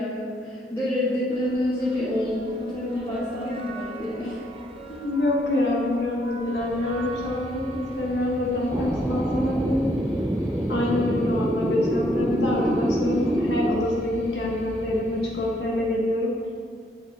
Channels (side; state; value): both; normal; correlation 0.70